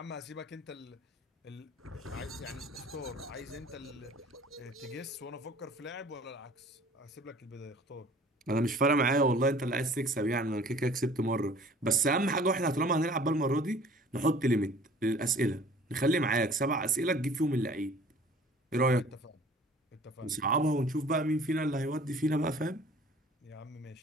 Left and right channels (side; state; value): both; normal; correlation 0.50